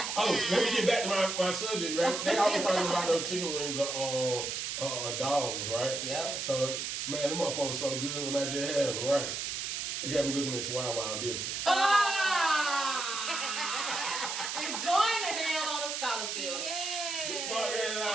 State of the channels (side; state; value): right; noise; hiss, 3 dB below the sound